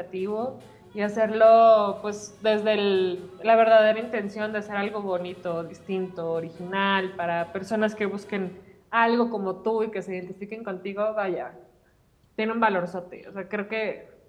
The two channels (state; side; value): identical; both; correlation 1.00